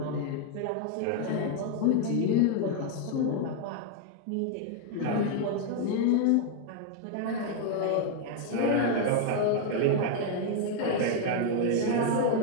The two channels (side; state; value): both; different; correlation 0.00